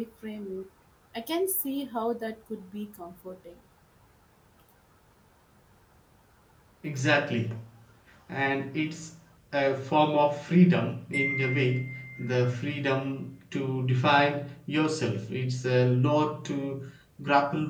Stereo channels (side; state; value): both; identical; correlation 1.00